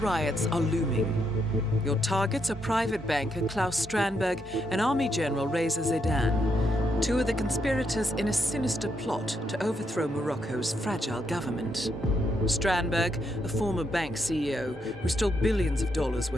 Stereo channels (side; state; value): both; normal; correlation 0.78